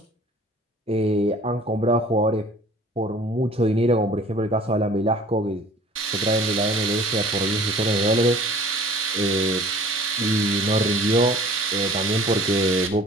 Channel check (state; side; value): normal; both; correlation 0.47